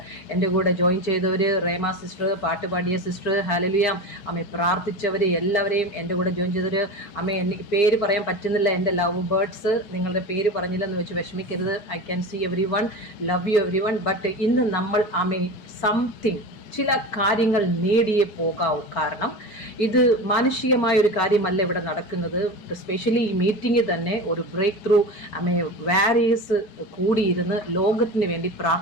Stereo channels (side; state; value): right; late; 4.4 ms